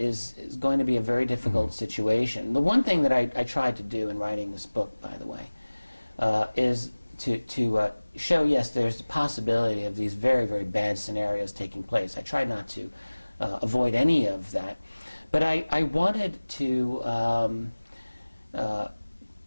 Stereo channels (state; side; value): inverted; both; correlation -1.00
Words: going to be a very difficult situation. The one thing that I tried to do in writing this book, by the way, is to show, yes, there's the possibility of these very, very bad scenarios taking place. I tried not to avoid any of that. But I wanted to I